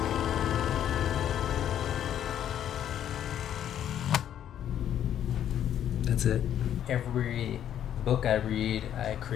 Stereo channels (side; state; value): right; quieter; 10.3 dB